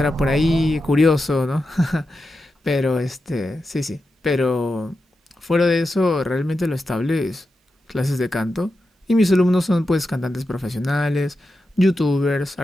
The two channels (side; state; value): both; normal; correlation 0.89